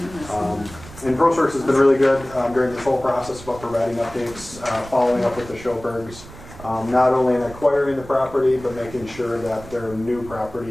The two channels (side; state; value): right; noise; rumble, 17 dB below the sound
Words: And ProSource has been really good during this whole process about providing updates, following up with the Schilbergs. Not only in acquiring the property, but making sure that their new